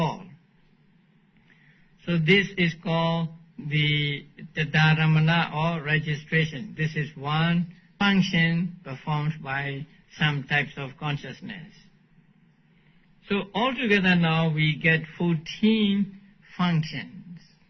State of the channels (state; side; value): identical; both; correlation 1.00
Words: So this is called the dharamana or registration. This is one function performed by some types of consciousness. So altogether now we get 14 functions.